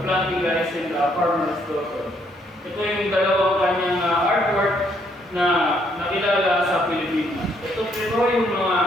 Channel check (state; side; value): normal; both; correlation 0.70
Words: rice and farmer's daughter. Ito yung dalawang kanyang artwork na nakilala sa Pilipinas. Ito